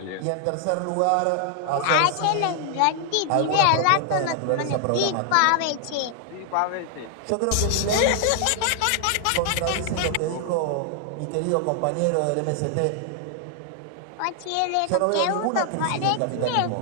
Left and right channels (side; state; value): both; different; correlation 0.00